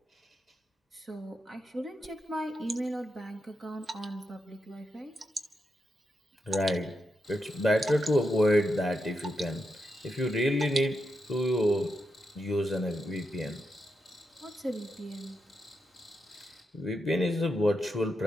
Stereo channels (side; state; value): both; normal; correlation 0.85